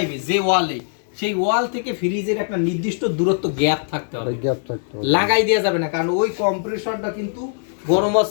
যে ওয়ালে সেই ওয়াল থেকে ফ্রিজের একটা নির্দিষ্ট দূরত্ব গ্যাপ থাকতে হবে, গ্যাপ থাকতে হবে। লাগাই দেওয়া যাবে না, কারণ ওই কম্প্রেসরটা কিন্তু গরম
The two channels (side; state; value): right; silent; 65 dB below the other